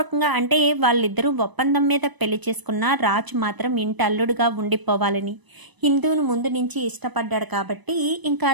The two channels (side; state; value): left; late; 1.0 ms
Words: అంటే వాళ్ళిద్దరూ ఒప్పందం మీద పెళ్లి చేసుకున్న రాజు మాత్రం ఇంటి అల్లుడుగా ఉండిపోవాలని ఇందును ముందు నుంచి ఇష్టపడ్డాడు కాబట్టి ఇంకా